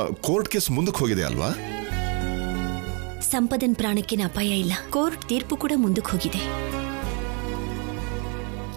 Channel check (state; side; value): quieter; left; 35.3 dB